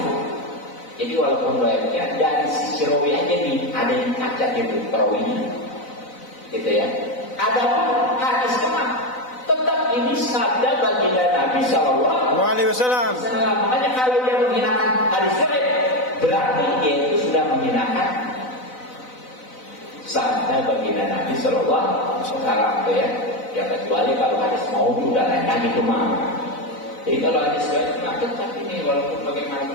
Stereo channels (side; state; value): right; late; 4.0 ms